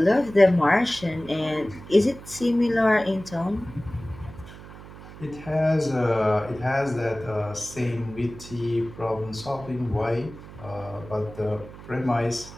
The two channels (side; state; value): right; noise; hum, 16 dB below the sound